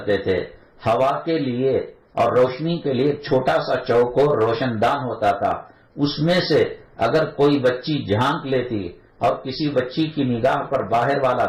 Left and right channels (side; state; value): both; identical; correlation 1.00